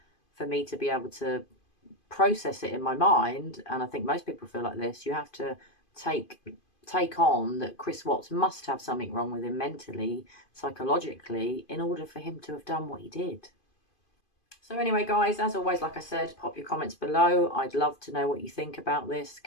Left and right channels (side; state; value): right; late; 2.5 ms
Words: for me to be able to process it in my mind, and I think most people feel like this, you have to take on that Chris Watts must have something wrong with him mentally, psychologically, in order for him to have done what he did. So anyway, guys, as always, like I said, pop your comments below. I'd love to know what you think about this.